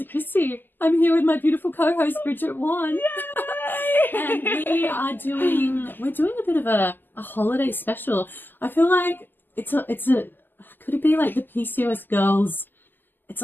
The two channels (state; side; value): late; right; 0.091 ms